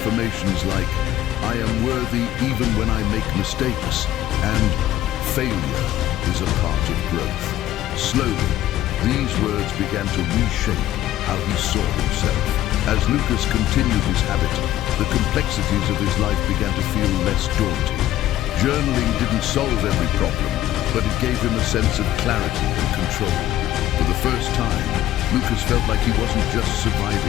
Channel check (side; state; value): right; quieter; 13.5 dB